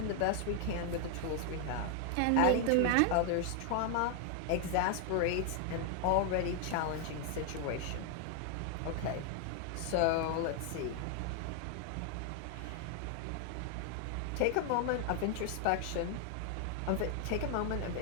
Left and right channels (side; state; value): both; different; correlation 0.00